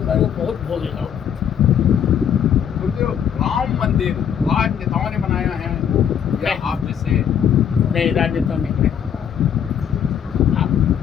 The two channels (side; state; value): right; quieter; 8.5 dB